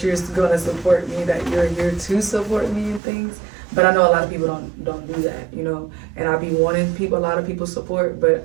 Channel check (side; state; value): left; drops out; at 3.0 s